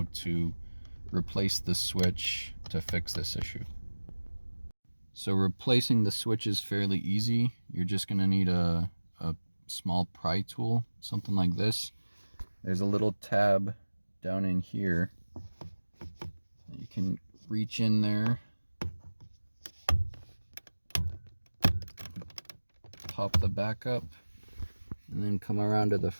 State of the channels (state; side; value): inverted; both; correlation -1.00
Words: to replace the switch to fix this issue. So replacing the switch is fairly easy. You're just going to need a small pry tool, something like this. There's a little tab down in here. You can reach in there, pop the back up, and then come around to the